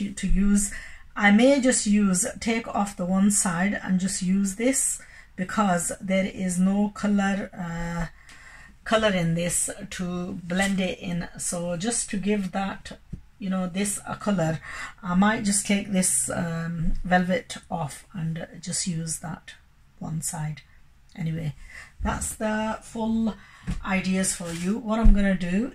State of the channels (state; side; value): identical; both; correlation 1.00